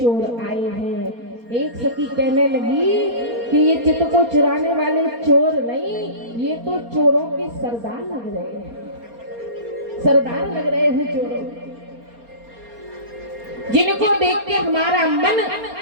आए हैं। एक सखी कहने लगी कि ये चित को चुराने वाले चोर नहीं, ये तो चोरों के सरदार लग रहे हैं, सरदार लग रहे हैं चोरों, जिनको देख के हमारा मन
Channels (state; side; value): late; left; 4.3 ms